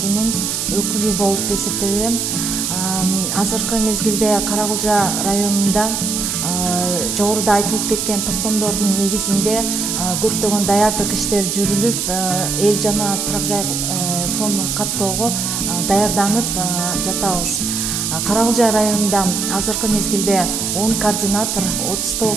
өкүлү болуп эсептелем. Азыркы мезгилде Каракулжа районунда жогоруда айтылып кеткен токтомдордун негизинде көптөгөн даярдык иштер жүрүлүп, эл жана турак жай фондун каттоого даярданып жатабыз. Каракулжа районунда азыркы мезгилде 10 координатор,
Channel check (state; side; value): noise; right; hiss, 1 dB below the sound